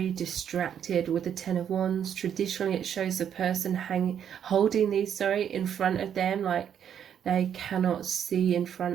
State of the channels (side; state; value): left; quieter; 8.9 dB